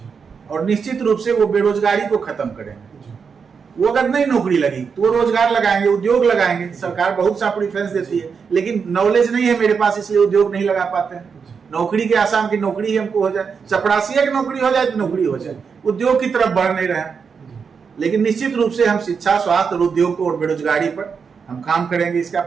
और निश्चित रूप से वो बेरोजगारी को खत्म करेंगे। वो अगर नहीं नौकरी लगी तो वो रोजगार लगाएंगे, उद्योग लगाएंगे। सरकार बहुत सा प्रेफरेंस देती है, लेकिन नॉलेज नहीं है मेरे पास, इसलिए उद्योग नहीं लगा पाते हैं। नौकरी के आसाम की नौकरी ही हमको हो जाए, चपरासिया की नौकरी हो जाए तो नौकरी हो जाए, उद्योग की तरफ बढ़ नहीं रहे। लेकिन निश्चित रूप से हम शिक्षा, स्वास्थ्य और उद्योग को और बेरोजगारी पर हम काम करेंगे। इसका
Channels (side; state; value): left; quieter; 5.9 dB